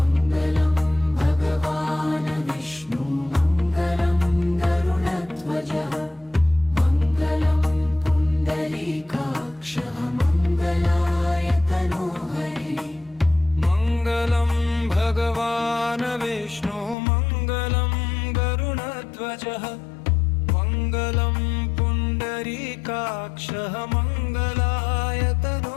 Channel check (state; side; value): drops out; right; at 16.9 s